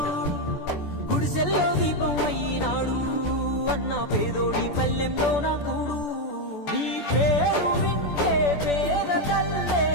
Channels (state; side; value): late; right; 14 ms